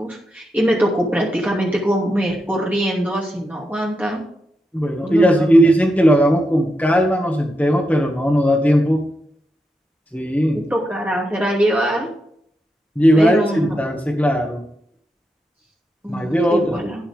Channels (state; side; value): normal; both; correlation 0.85